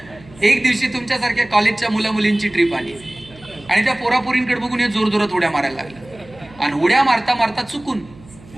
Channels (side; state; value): right; noise; hum, 22 dB below the sound